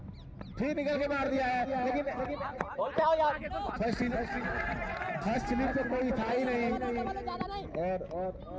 फिर निकल के मार दिया है, लेकिन फर्स्ट स्लिप पे कोई था ही नहीं और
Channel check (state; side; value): identical; both; correlation 1.00